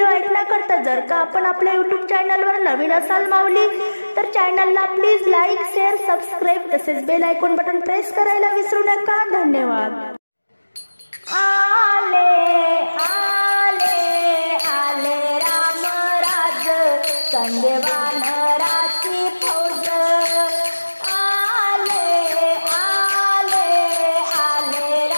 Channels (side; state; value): both; inverted; correlation -1.00